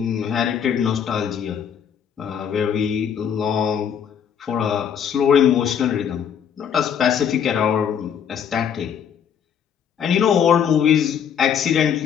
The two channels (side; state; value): right; quieter; 8.2 dB